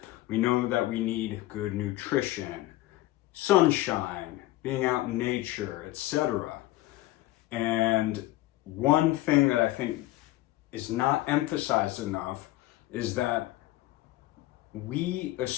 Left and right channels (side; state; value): right; quieter; 16.9 dB